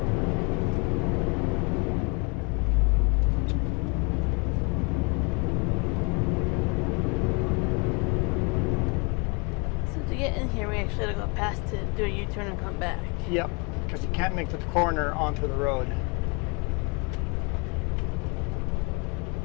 So to get in here, we actually had to go past to do a U-turn and come back. Yep, because you can't make the corner onto the road.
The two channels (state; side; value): quieter; right; 32.1 dB